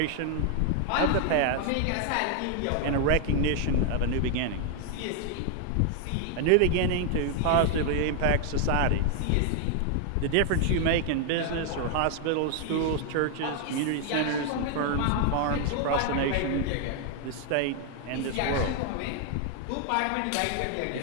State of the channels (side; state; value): both; different; correlation 0.00